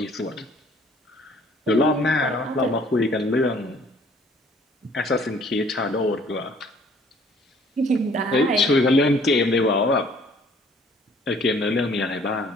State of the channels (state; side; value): normal; both; correlation 0.57